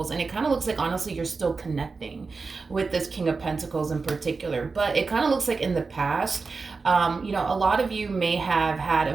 And it kind of looks like, honestly, you're still connecting with this King of Pentacles in particular. But it kind of looks like in the past, a lot of you may have had a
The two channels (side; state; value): left; quieter; 4.4 dB